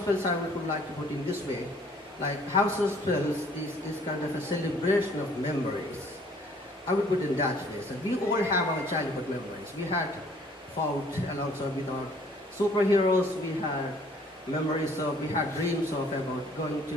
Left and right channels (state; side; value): normal; both; correlation 0.58